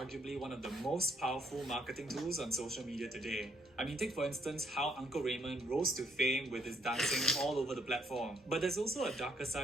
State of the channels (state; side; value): normal; both; correlation 0.69